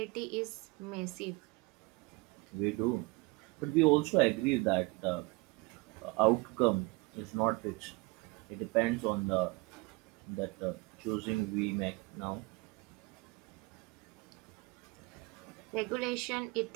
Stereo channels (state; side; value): quieter; left; 25.0 dB